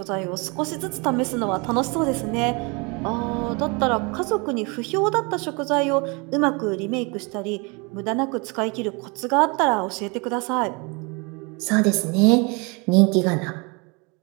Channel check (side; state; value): left; quieter; 29.8 dB